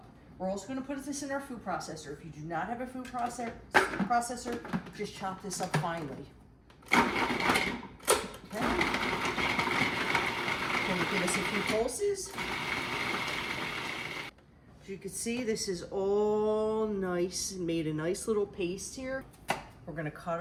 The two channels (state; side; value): identical; both; correlation 1.00